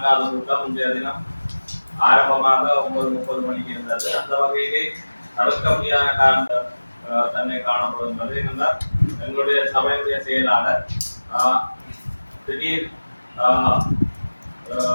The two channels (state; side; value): inverted; both; correlation -1.00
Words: கூட்டம் இன்றைய தினம் ஆரம்பமாக 9:30 மணிக்கு இருந்தது. அந்த வகையிலே தவிர்க்க முடியாத காரணம் தன்னை காணப்படுகின்றது. என்னென்றால் எங்களுடைய சபையுடைய செயலாளர் திடீர்